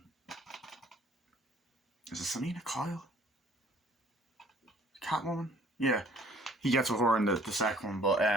it Selena Kyle? Catwoman? Yeah. He gets with her in the second one, but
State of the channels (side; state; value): both; normal; correlation 0.57